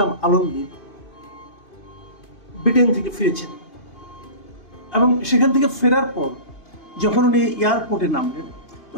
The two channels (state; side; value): late; right; 2.5 ms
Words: আলমগীর ব্রিটেন থেকে ফিরেছেন এবং সেখান থেকে ফেরার পর যখন উনি এয়ারপোর্টে নামলেন